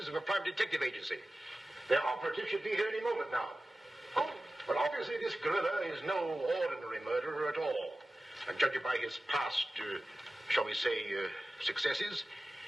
of a private detective agency. Their operative should be here any moment now. Oh, but obviously this gorilla is no ordinary murderer at all. And judging by his past, shall we say, successes,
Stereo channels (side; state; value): both; normal; correlation 0.95